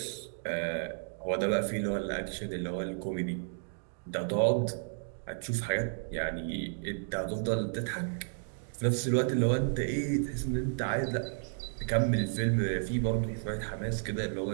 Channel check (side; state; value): left; silent; digital silence